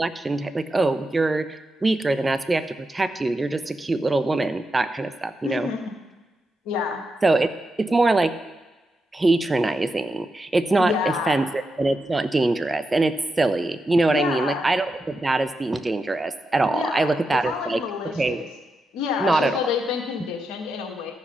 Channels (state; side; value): normal; both; correlation 0.87